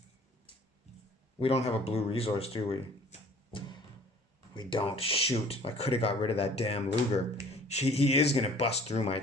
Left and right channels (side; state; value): both; normal; correlation 0.51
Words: We don't have a blue resource, do we? We don't. Shoot. I could have got rid of that damn Luger. He is going to bust through my